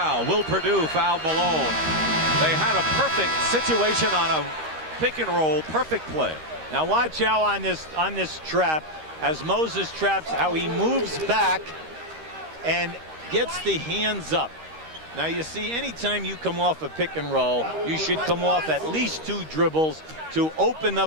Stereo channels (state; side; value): late; left; 13 ms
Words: Will Perdue fouled Malone. They had a perfect situation on a pick and roll. Perfect play. Now watch out on this trap as Moses traps, how he moves back and gets the hands up. Now you see, anytime you come off a pick and roll, you should come off at least 2 dribbles to open